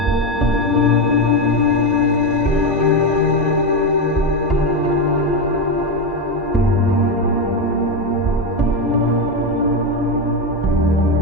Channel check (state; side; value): normal; both; correlation 0.11